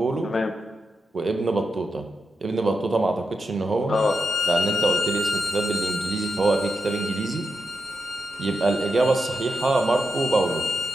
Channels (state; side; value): normal; both; correlation 0.86